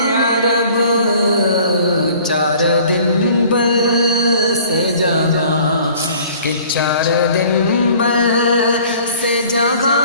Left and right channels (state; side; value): inverted; both; correlation -0.52